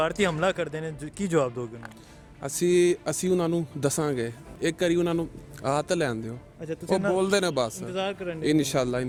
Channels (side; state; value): both; identical; correlation 1.00